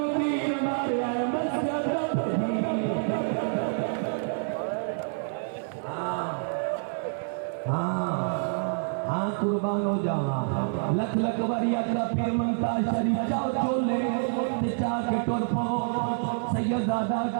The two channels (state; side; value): silent; left; 57 dB below the other